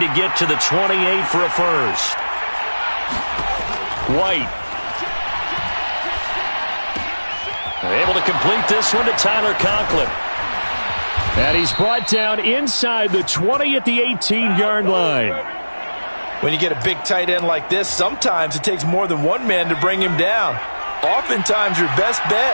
to get to the 28 for a first. White. Able to complete this one to Tyler Conklin. And he's brought down inside the 20 at the 18-yard line. When you get a big tight end like this, sometimes it takes more than one man to bring him down. Oftentimes, your best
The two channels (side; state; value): both; inverted; correlation -1.00